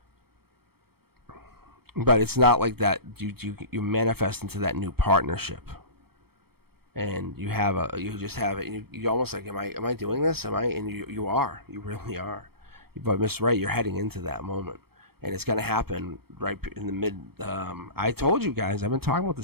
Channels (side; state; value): left; late; 0.96 ms